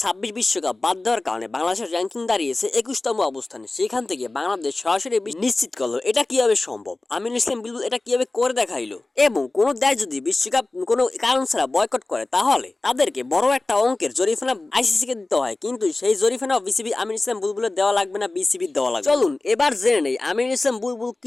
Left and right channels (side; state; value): right; quieter; 3.0 dB